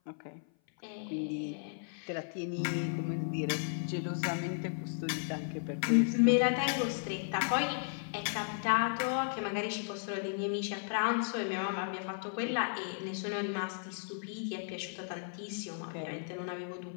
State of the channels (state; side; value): silent; right; 55 dB below the other